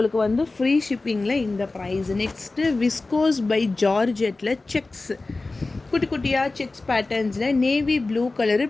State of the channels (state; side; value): quieter; right; 3.4 dB